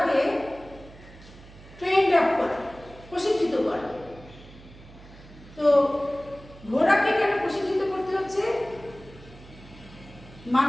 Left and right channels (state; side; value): noise; right; hum, 20 dB below the sound